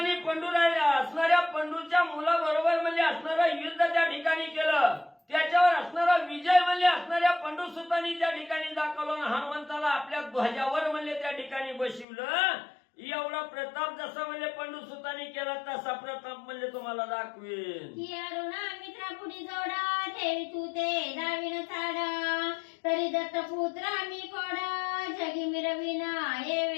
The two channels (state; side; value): drops out; right; at 12.1 s